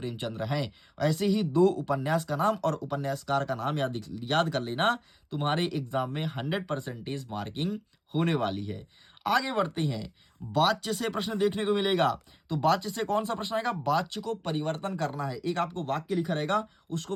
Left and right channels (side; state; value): both; identical; correlation 1.00